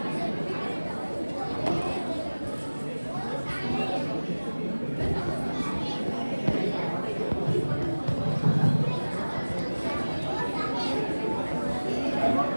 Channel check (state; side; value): inverted; both; correlation -1.00